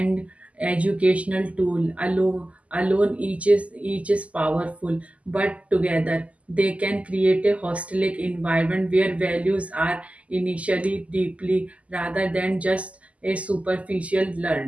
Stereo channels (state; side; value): late; left; 0.067 ms